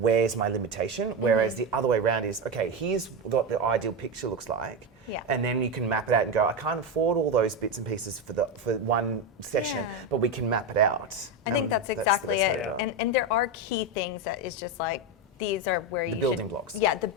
my limitation? Whereas the other way around is, okay, here's what the ideal picture looks like. Yeah. And then you can map it out and go, I can't afford all those bits and pieces for one session, but we can map it out. I think that's exactly the best way it. to do And there are key things that is just like, these are where you The building blocks. Yeah, the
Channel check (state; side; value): normal; both; correlation 0.13